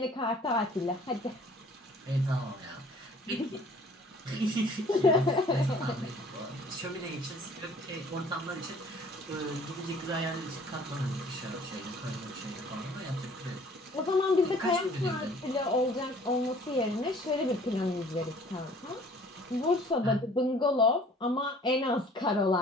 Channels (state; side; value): normal; both; correlation 0.53